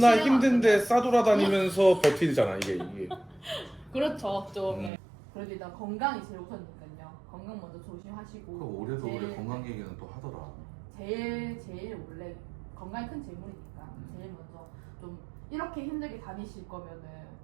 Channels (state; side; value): drops out; left; at 4.9 s